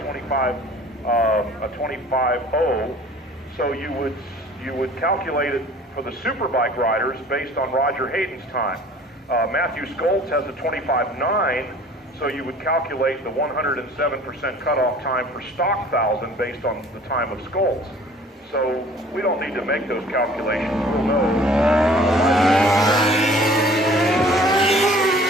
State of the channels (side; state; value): both; normal; correlation 0.50